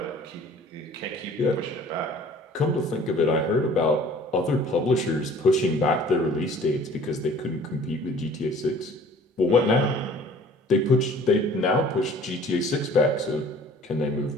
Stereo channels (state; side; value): normal; both; correlation 0.50